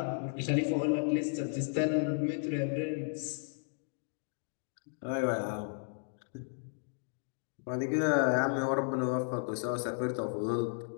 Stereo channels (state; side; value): silent; right; digital silence